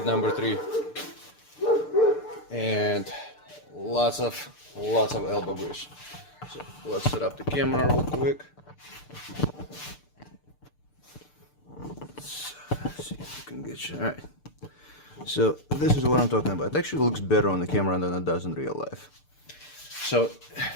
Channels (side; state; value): right; late; 6.8 ms